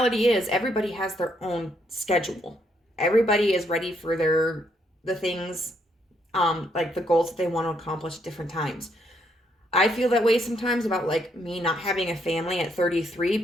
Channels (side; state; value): both; normal; correlation 0.73